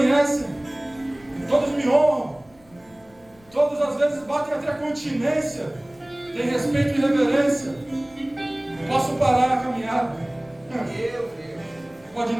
todos me honram, todos às vezes batem até a continência, tem respeito e reverência. Posso parar a caminhada? Pode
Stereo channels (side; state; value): left; noise; rumble, 29 dB below the sound